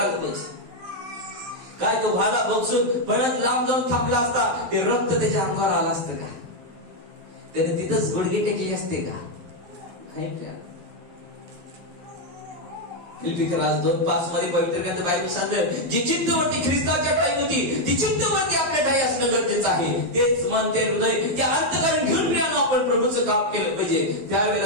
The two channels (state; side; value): late; left; 11 ms